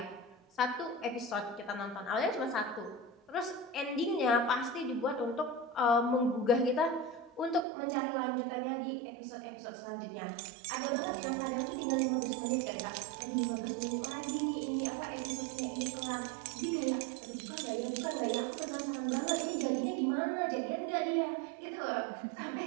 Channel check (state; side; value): drops out; left; at 7.7 s